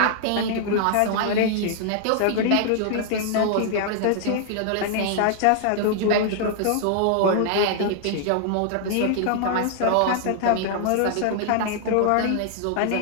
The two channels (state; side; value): different; both; correlation -0.01